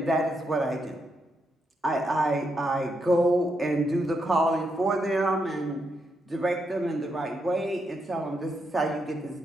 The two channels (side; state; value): both; normal; correlation 0.81